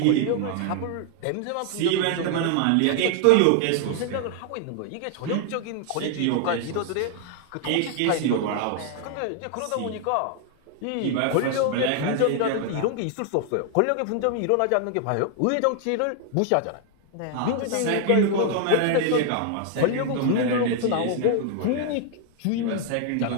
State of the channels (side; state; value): both; different; correlation 0.00